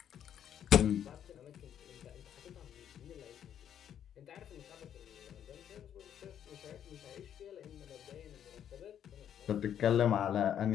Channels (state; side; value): quieter; right; 9.6 dB